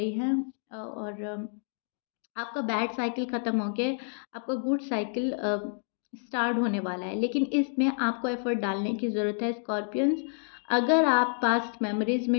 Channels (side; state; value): right; silent; 57 dB below the other